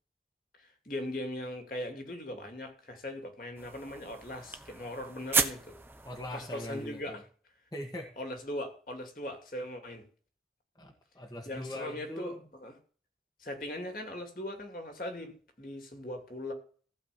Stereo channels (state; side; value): normal; both; correlation 0.43